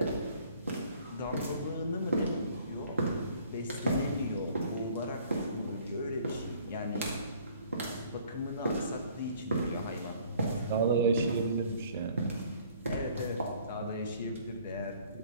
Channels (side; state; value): both; inverted; correlation -0.56